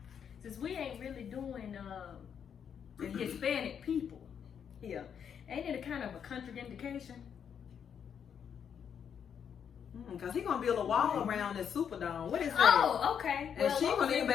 Since we ain't really doing the Hispanic people here, ain't it a kind of a contraindication? Because he gonna build a wall around the Superdome. What is that? Oh, okay. And she gonna need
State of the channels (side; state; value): right; quieter; 7.8 dB